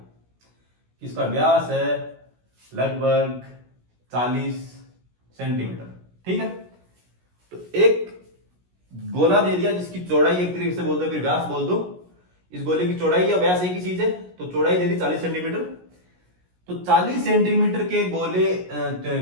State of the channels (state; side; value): late; left; 17 ms